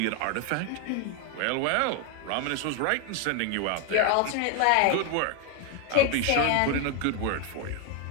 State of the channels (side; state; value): both; different; correlation 0.01